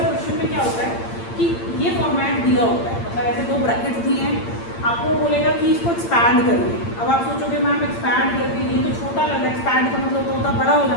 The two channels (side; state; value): right; late; 8.8 ms